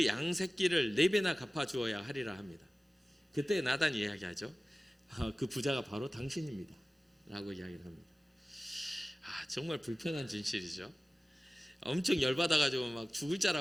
양 새끼를 4배나 갚아 주어야 하리라 합니다. 그때 나단이 이야기하죠. 그 부자가 바로 당신입니다 라고 이야기를 합니다. 정말 불편한 진실이죠. 엄청 열받아가지고 막 죽을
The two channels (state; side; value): normal; both; correlation 0.97